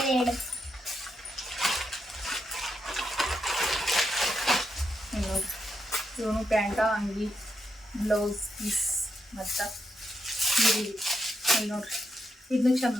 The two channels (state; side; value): normal; both; correlation 0.82